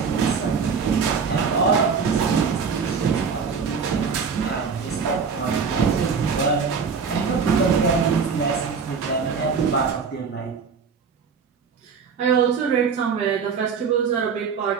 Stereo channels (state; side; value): quieter; left; 5.8 dB